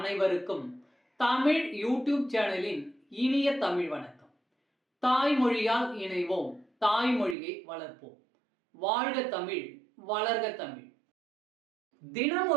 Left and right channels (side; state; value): left; drops out; at 7.4 s